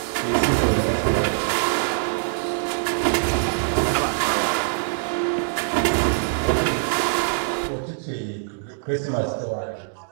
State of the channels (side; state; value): left; silent; digital silence